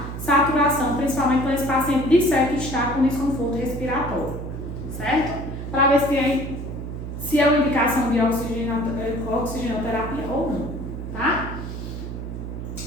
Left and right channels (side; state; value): right; noise; hum, 7 dB below the sound